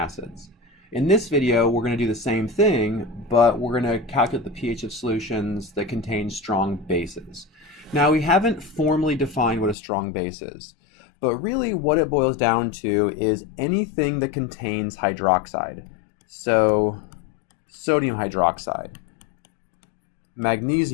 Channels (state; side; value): drops out; right; at 9.8 s